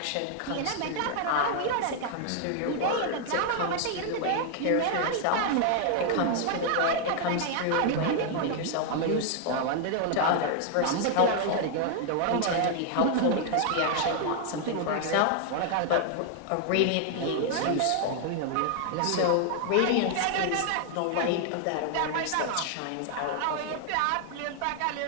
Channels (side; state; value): both; different; correlation 0.00